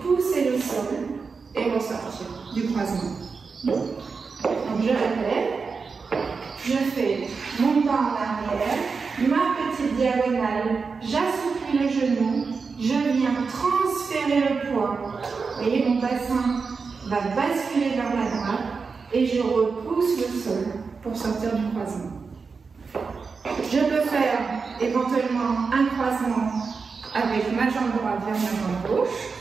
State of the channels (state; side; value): quieter; left; 4.9 dB